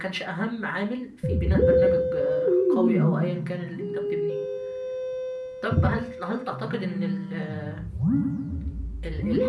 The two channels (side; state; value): both; identical; correlation 1.00